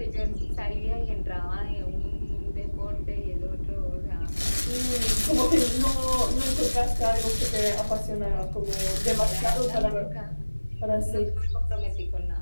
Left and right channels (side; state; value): both; inverted; correlation -1.00